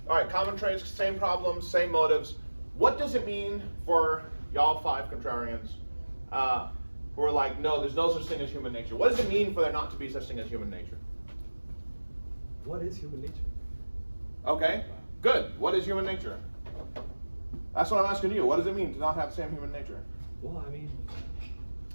right, common traits, same problems, same motives. What does it mean for y'all 5 contrarians who are like, no, there's no such thing as human nature? What does it mean for there not to be such thing as human nature? What is human nature? Okay, good. What is human nature? That's what I'm asking you. What does it mean to not have the same human nature? Well, I mean,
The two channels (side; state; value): both; inverted; correlation -1.00